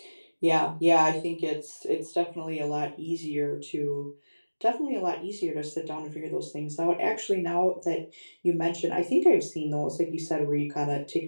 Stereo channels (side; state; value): both; inverted; correlation -1.00